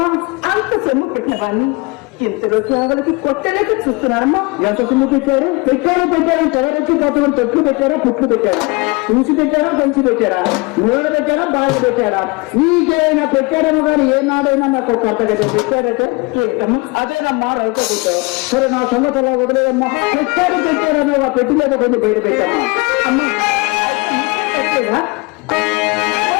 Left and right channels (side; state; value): right; quieter; 26.9 dB